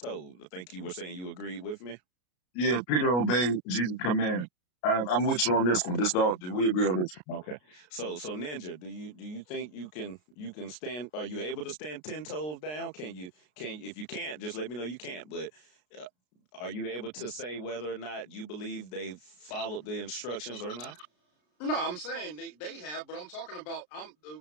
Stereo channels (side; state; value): right; late; 33 ms